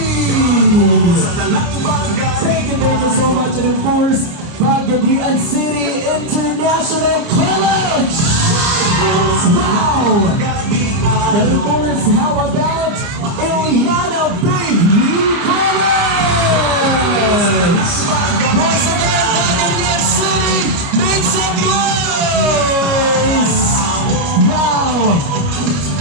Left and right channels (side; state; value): left; late; 29 ms